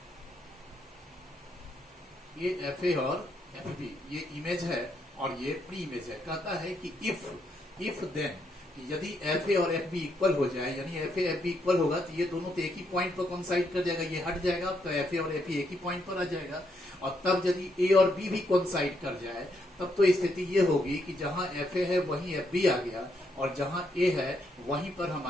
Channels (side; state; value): both; normal; correlation 0.77